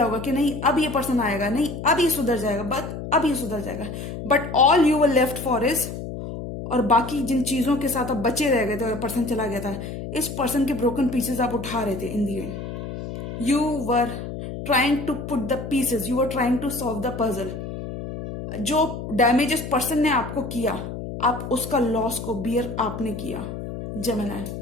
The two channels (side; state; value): left; noise; hum, 8 dB below the sound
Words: होगा कि नहीं अब ये पर्सन आएगा, नहीं अब ये सुधर जाएगा, अब ये सुधर जाएगा। But all you were left for is, और बाकी जिन चीजों के साथ आप बचे रह गए थे और पर्सन चला गया था, इस पर्सन के ब्रोकन पीसेस आप उठा रहे थे। In the end you were trying to put the pieces, you were trying to solve the puzzle. जो डैमेज इस पर्सन ने आपको किया, आप उसका लॉस को बियर आपने किया जेमिनी।